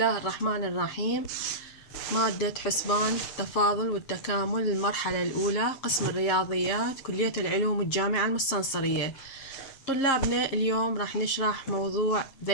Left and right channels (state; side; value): late; right; 7.5 ms